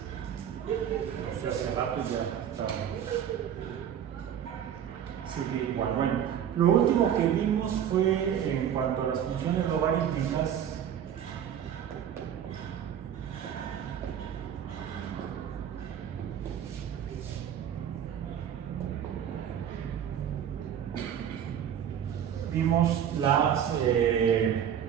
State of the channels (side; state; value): left; quieter; 9.3 dB